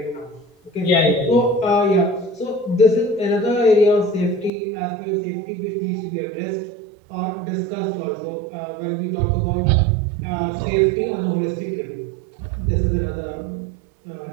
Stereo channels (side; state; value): left; drops out; at 4.5 s